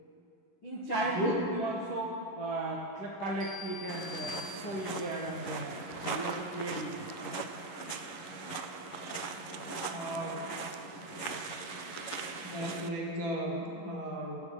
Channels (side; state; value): right; late; 11 ms